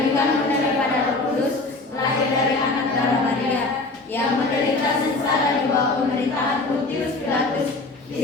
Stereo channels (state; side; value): quieter; right; 3.2 dB